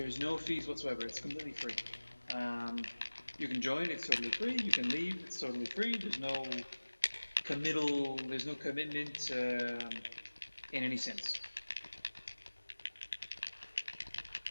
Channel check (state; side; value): inverted; both; correlation -1.00